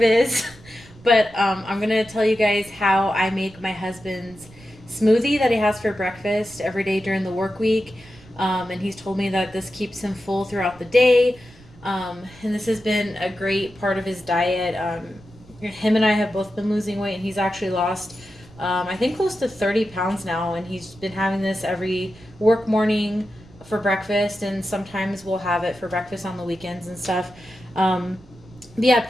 is. But I'm going to tell you guys how I make my husband's smoothie that he has for breakfast every day during the work week. And he's told me that this keeps him full throughout the day. And this has been a great part of his diet. Him and I have both been losing weight, and he's actually lost, I think, close to 30 pounds now. And he's been having this every work morning for breakfast, and sometimes we'll have it for breakfast on the weekends and stuff. Um, yeah,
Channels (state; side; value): noise; right; rumble, 23 dB below the sound